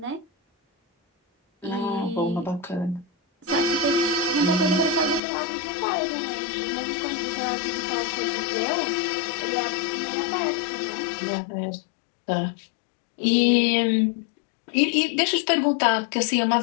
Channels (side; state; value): right; drops out; at 5.2 s